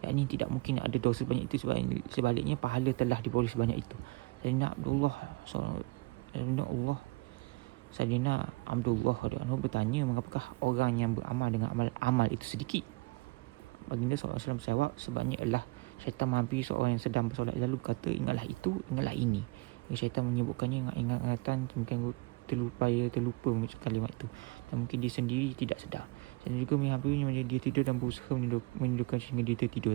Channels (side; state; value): left; quieter; 24.5 dB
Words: Yakni tidak mungkin ada dosa banyak itu, sebaliknya pahala telah diborong sebanyak itu. Sayyidina Abdullah bertanya, mengapakah orang yang beramal dengan amal itu sedikit? Baginda SAW menjawab, sebabnya ialah syaitan menghampiri seorang yang sedang bersolat, lalu berkata, ingatlah itu, ingatlah ini. Syaitan menyebutkannya ingatan, mungkin terlupa mengucap kalimat itu, dan mungkin dia sendiri tidak sedar. Dan juga menghampirinya menjadi dia tidur dan berusaha menidurkan sehingga dia tertidur